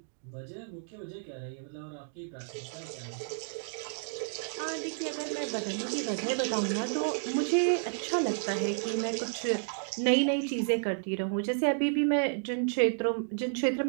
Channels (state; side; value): silent; left; digital silence